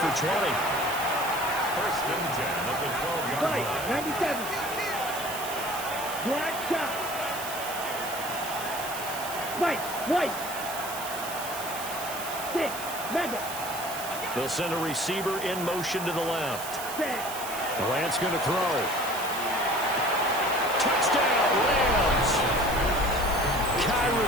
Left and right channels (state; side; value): noise; right; hiss, 9 dB below the sound